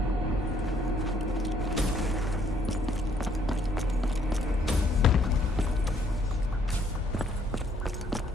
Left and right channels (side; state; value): both; normal; correlation 0.67